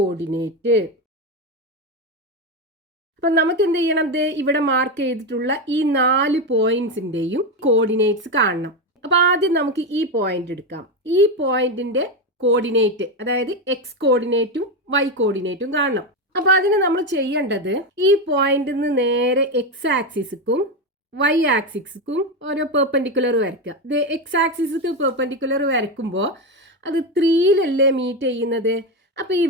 അപ്പൊ നമുക്ക് എന്ത് ചെയ്യണം? ഇവിടെ മാർക്ക് ചെയ്തിട്ടുള്ള ഈ 4 പോയിന്റ്സിന്റെയും കോർഡിനേറ്റ്സ് കാണണം. അപ്പൊ ആദ്യം നമുക്ക് ഈ പോയിന്റ് എടുക്കാം. ഈ പോയിന്റിന്റെ കോർഡിനേറ്റ്, അതായത് എക്സ് കോർഡിനേറ്റും വൈ കോർഡിനേറ്റും കാണണം. അപ്പൊ അതിന് നമ്മൾ ചെയ്യേണ്ടത്, ഈ പോയിന്റിൽ നിന്ന് നേരെ എക്സ് ആക്സിസ്ക്കും വൈ ആക്സിസ്ക്കും ഓരോ പെർപെൻഡിക്കുലർ വരയ്ക്കുക. ഇത് എക്സ് ആക്സിസ്ക്ക് പെർപെൻഡിക്കുലർ വരയ്ക്കുമ്പോൾ അത് 3ലല്ലേ മീറ്റ് ചെയ്യുന്നത്? അപ്പൊ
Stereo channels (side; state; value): both; normal; correlation 0.12